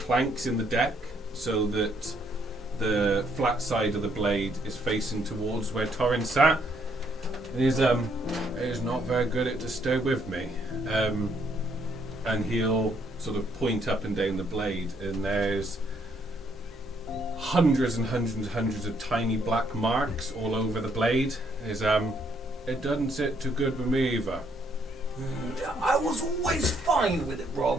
in the deck so that the flat side of the blade is facing towards where Torin sat. And he's not very good at to stay with me. And he'll sort of point up and down the blade, and there's hundreds and hundreds and hundreds of tiny black marks all over the blade. It doesn't sit too good with me either. I was always fine with it,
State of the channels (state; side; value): normal; both; correlation 0.70